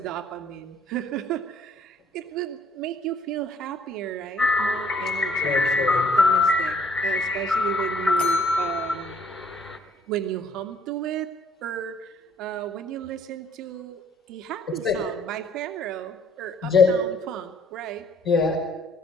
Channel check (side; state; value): both; normal; correlation 0.62